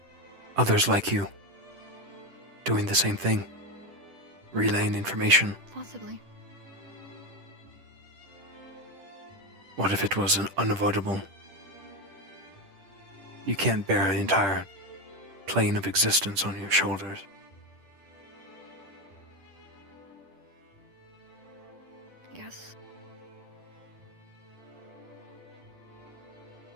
others like you, doing the same thing, relaying information. Possibly. What if it was unavoidable? You can't bear an entire plane of existence on your shoulders. Yes.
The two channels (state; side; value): late; left; 10 ms